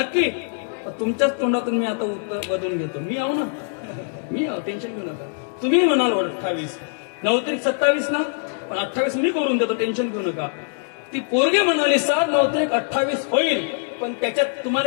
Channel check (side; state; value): right; silent; digital silence